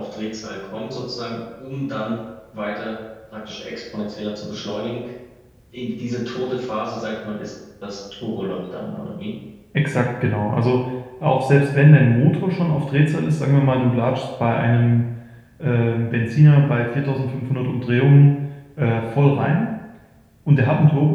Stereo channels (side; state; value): both; identical; correlation 1.00